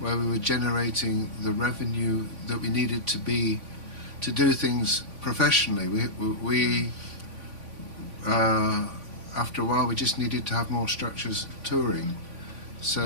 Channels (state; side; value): late; left; 3.5 ms